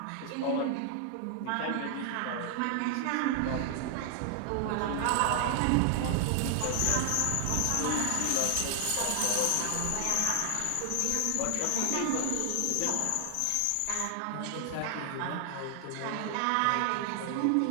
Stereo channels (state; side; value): different; both; correlation 0.00